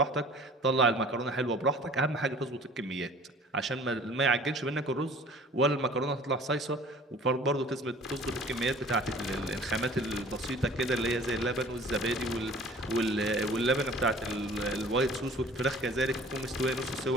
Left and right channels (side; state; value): both; normal; correlation 0.48